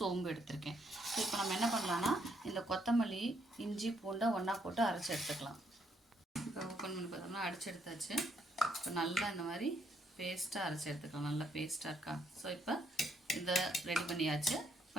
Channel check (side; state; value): both; normal; correlation 0.73